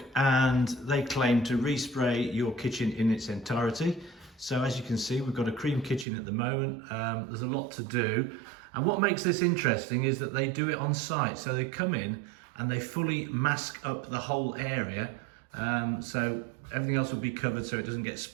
and they claim to respray your kitchen in its entirety. So as you can see, we've got a cream kitchen at the moment. There's a lot to do. And what makes this interesting is that they do it on site. So they come in and they fully mask up the whole area. So everything else will be covered so it doesn't get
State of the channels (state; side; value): drops out; left; at 6.1 s